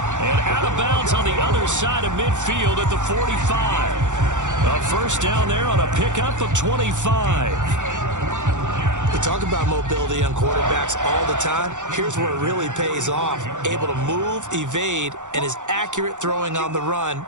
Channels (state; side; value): late; left; 0.85 ms